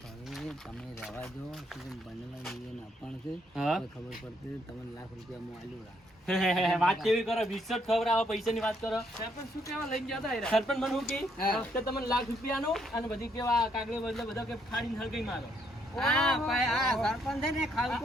તમે રહેવા જો શું બનેલા જીવન આપણ છે હા. કોઈ ખબર પડતી તમને લાખ રૂપિયા હું આલ્યું રા વાત કેવી કરો? 20 ખબર આવે પૈસાની વાત કરો. સરપંચ શું કેવા લઈને જતા સરપંચ મને શું કે હા. કે તમને લાખ રૂપિયાનું અને બધી કેવા કાગળી બદલે બધા કે ફાડીને હલગાઈ મારો. હા ભાઈ આ સરપંચ છે ને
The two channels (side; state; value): both; normal; correlation 0.72